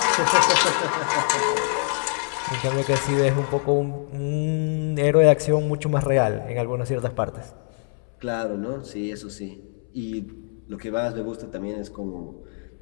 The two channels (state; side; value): silent; right; 62 dB below the other